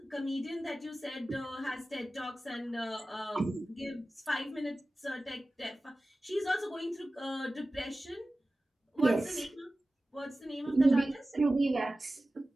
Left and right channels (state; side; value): normal; both; correlation 0.96